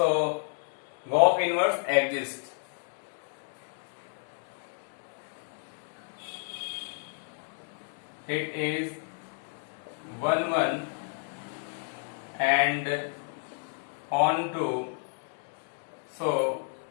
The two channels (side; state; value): right; silent; 57 dB below the other